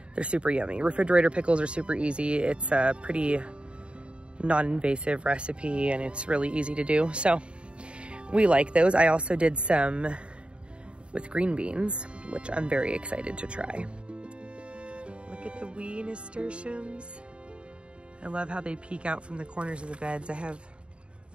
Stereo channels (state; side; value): late; left; 0.057 ms